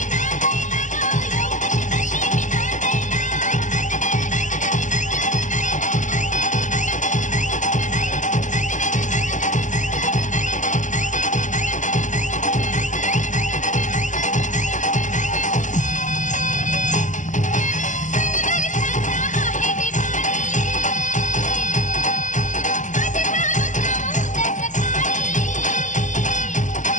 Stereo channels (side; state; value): right; late; 0.36 ms